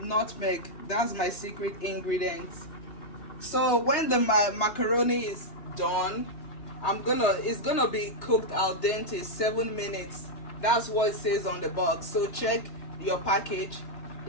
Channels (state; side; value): late; right; 3.4 ms